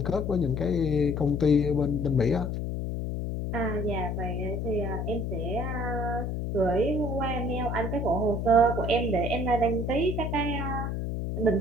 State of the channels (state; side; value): noise; left; hum, 2 dB below the sound